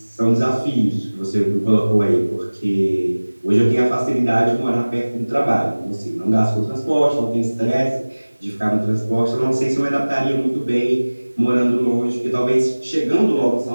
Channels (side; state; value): both; inverted; correlation -1.00